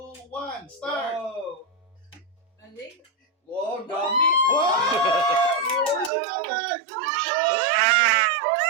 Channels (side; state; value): left; drops out; at 6.1 s